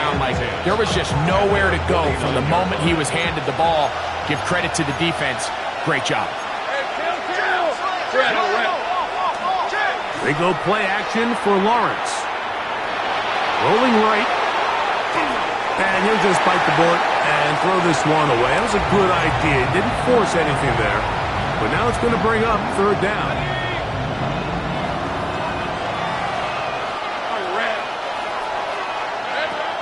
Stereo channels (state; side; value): identical; both; correlation 1.00